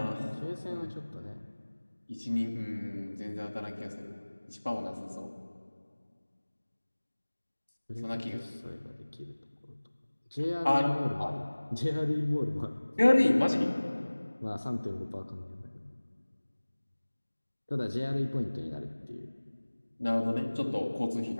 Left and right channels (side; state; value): both; inverted; correlation -1.00